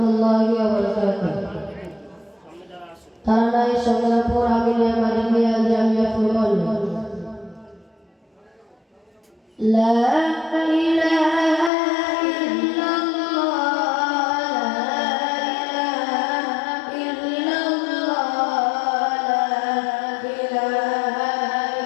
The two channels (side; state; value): right; drops out; at 11.7 s